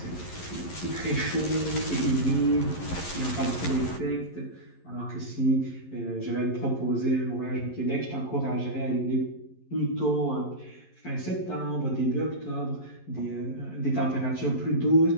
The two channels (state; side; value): late; right; 11 ms